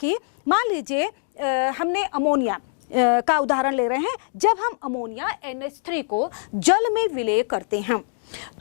मान लीजिए हमने अमोनिया का उदाहरण ले रहे हैं। जब हम अमोनिया NH3 को जल में विलय करते हैं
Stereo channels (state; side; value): silent; right; digital silence